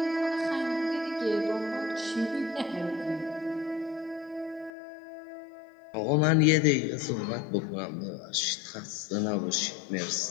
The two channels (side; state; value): right; drops out; at 4.7 s